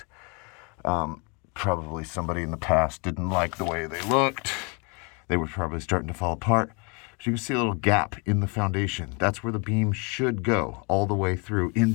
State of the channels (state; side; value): quieter; right; 32.7 dB